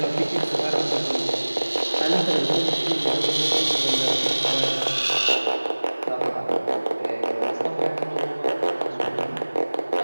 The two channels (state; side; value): inverted; both; correlation -1.00